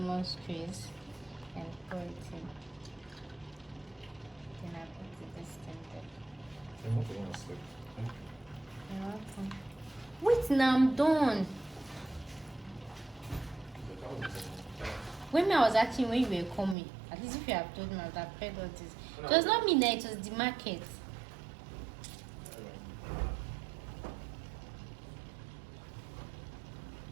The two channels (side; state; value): left; drops out; at 16.8 s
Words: squeeze and pour it in. Then I put this thing there. You're welcome. Wait, now I'm done. When I was asking when you were coming, at least if you have told me, I would have paid all this. It was not me, it was the market.